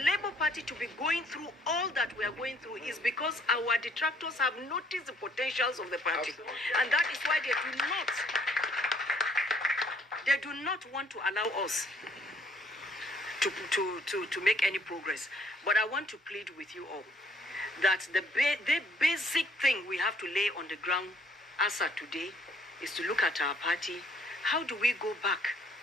Party to be going through all that we are going through is because our detractors have noticed the potentials of the party. And that is why they do not want to allow us to make any progress. But I want to plead with you all that the basic thing we have to lay on the ground as of today is to look at our party. How do we go back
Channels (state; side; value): normal; both; correlation 0.63